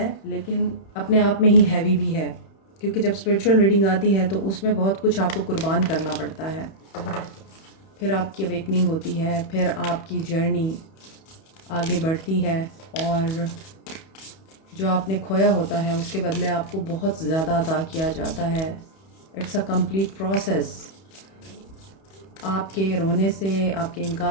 लेकिन अपने आप में ही हैवी भी है, क्योंकि जब स्पिरिचुअल रीडिंग आती है तो उसमें बहुत कुछ आपको कुर्बान करना पड़ता है। फिर आपकी अवेकनिंग होती है, फिर आपकी जर्नी आगे बढ़ती है और जो आपने खोया होता है उसके बदले आपको बहुत ज़्यादा अता किया जाता है। It's a complete process. आपके रोने से, आपके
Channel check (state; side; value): late; right; 31 ms